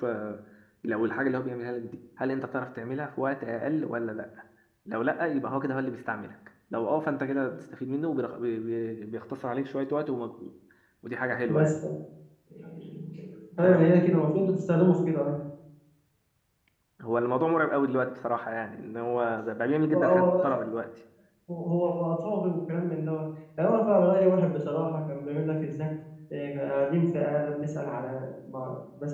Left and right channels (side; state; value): both; identical; correlation 1.00